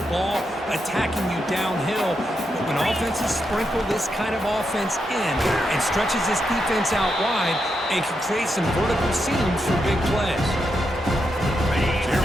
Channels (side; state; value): both; normal; correlation 0.84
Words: ball attacking you downhill. But when offenses sprinkle this kind of offense in and stretches this defense out wide, and can create some vertical seams for big plays. Here